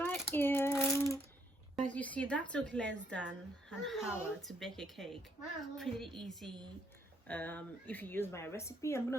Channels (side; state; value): both; normal; correlation 0.71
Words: here. As you see, that took less than an hour to bake a cake. Pretty easy. If you use my recipe, I'm